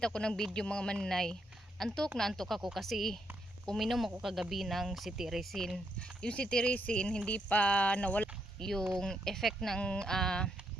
ako ng video mga maninay, antok na antok ako kasi uminom ako kagabi ng cetirizine. Yung cetirizine hindi pa nawala yung effect ng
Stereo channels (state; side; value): normal; both; correlation 0.77